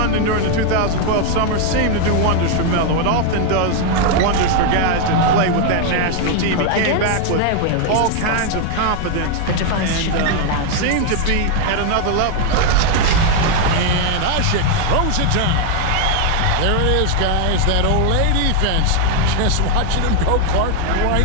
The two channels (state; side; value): different; both; correlation 0.00